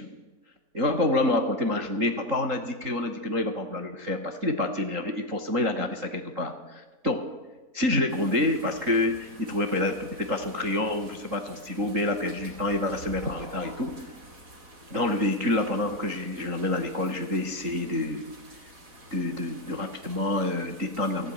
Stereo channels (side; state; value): left; late; 3.8 ms